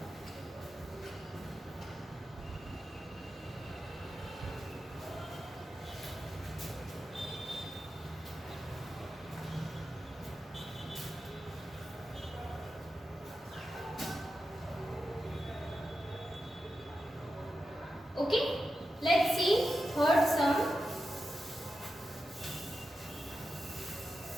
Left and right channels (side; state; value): both; normal; correlation 0.90